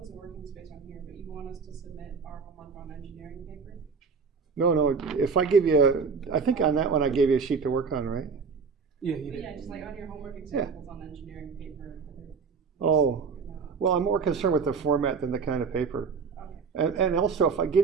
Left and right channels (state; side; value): quieter; left; 5.4 dB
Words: of working space on here, but you want us to submit our homework on engineering paper? No, if I give you, I think on that one I gave you a sheet to work on, right? Yeah, you did. Yeah, just like on your homework examples on engineering paper. Oh, well, I'm more concerned with the format than the kind of paper. And also, if I